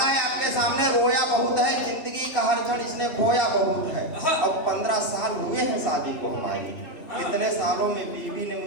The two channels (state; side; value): late; right; 2.7 ms